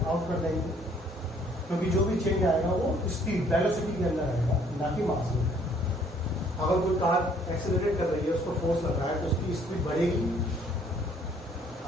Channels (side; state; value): both; normal; correlation 0.62